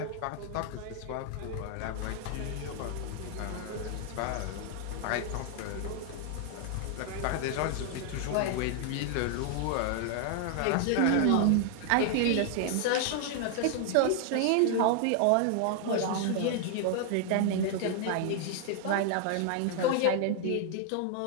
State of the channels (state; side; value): different; both; correlation 0.00